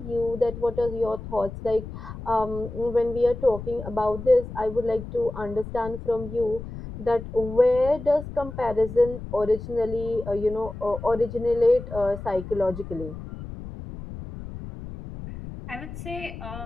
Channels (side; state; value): left; noise; rumble, 10 dB below the sound